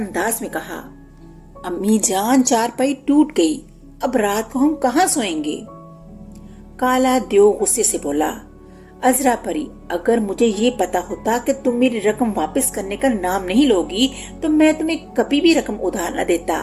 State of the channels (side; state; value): both; identical; correlation 1.00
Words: میں کہا، امی جان چارپائی ٹوٹ گئی، اب رات کو ہم کہاں سوئیں گے؟ کالا دیو غصے سے بولا، عذرا پری اگر مجھے یہ پتا ہوتا کہ تم میری رقم واپس کرنے کا نام نہیں لوگی تو میں تمہیں کبھی بھی رقم ادھار نہ دیتا۔